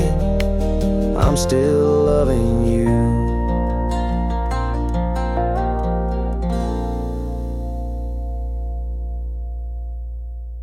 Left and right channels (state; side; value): identical; both; correlation 1.00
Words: I'm still loving you.